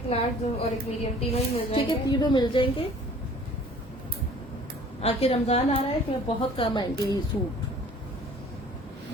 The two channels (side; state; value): both; normal; correlation 0.51